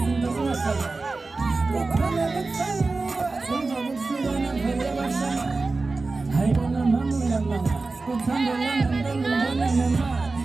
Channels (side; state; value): left; quieter; 3.7 dB